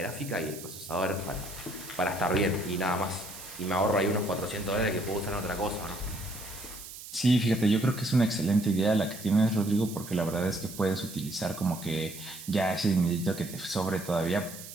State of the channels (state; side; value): noise; right; hiss, 13 dB below the sound